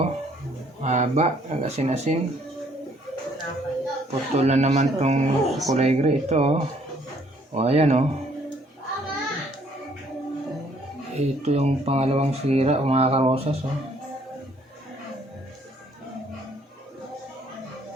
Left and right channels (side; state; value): both; normal; correlation 0.64